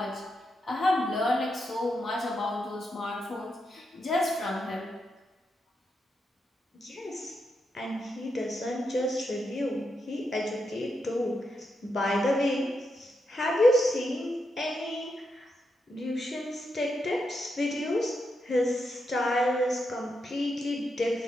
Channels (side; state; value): both; normal; correlation 0.84